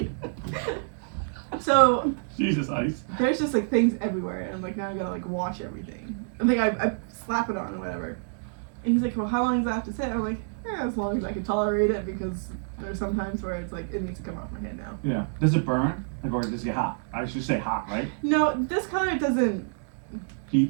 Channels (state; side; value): silent; left; digital silence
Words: So Jesus Ice. there's just like things everywhere, and I'm like, now I gotta like wash everything. I think I slap it on or whatever. And he's like, well, how long does that have to sit? I'm like, yeah, as long as I can tolerate it, because there's some times where it's like it needs to come off my head now. Yeah. Does it burn? Like, or does it get hot? I should say hot, right? No, this color doesn't.